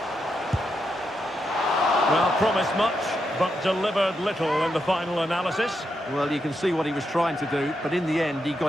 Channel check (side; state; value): both; normal; correlation 0.83